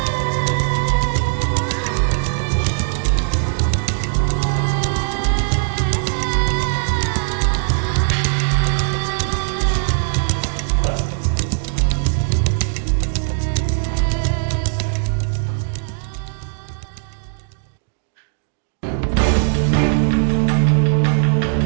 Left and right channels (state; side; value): silent; left; digital silence